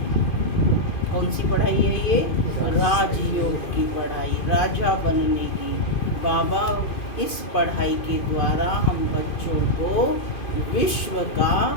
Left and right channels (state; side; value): late; right; 2.5 ms